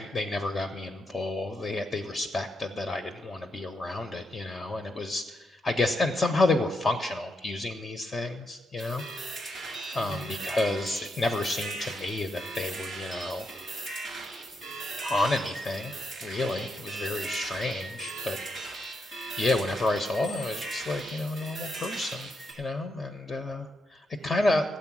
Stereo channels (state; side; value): normal; both; correlation 0.82